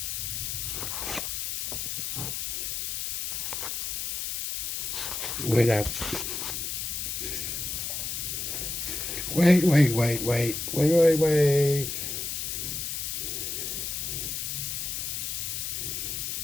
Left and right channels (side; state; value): left; noise; hiss, 3 dB below the sound